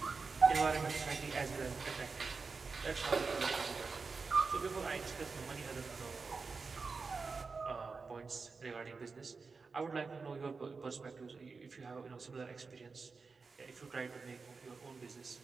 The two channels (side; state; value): left; quieter; 4.6 dB